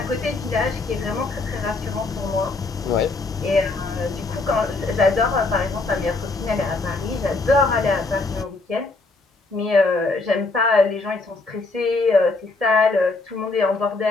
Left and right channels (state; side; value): quieter; right; 3.5 dB